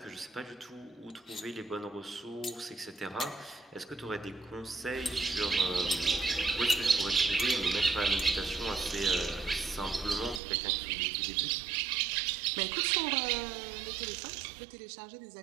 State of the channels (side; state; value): left; drops out; at 10.4 s